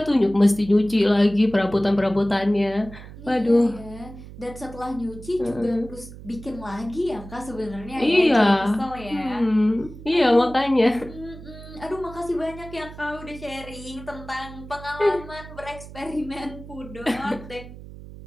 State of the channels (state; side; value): noise; right; hum, 15 dB below the sound